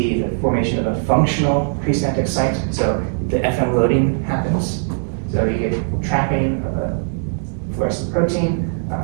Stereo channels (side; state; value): left; silent; digital silence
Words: the formation of a functional presynaptic site. So the FM loading happens, So you get trapping of a fluorescent protein,